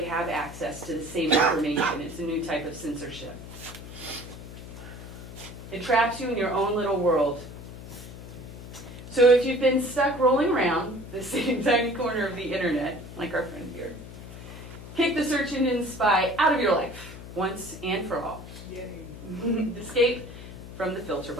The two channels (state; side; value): noise; left; hum, 13 dB below the sound